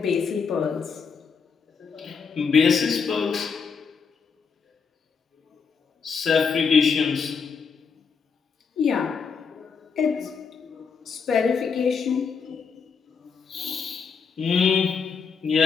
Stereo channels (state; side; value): quieter; right; 5.7 dB